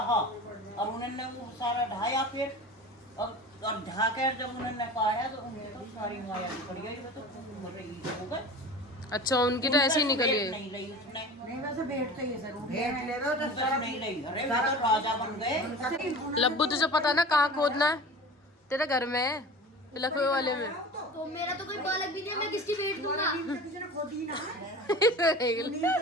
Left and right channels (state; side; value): normal; both; correlation 0.36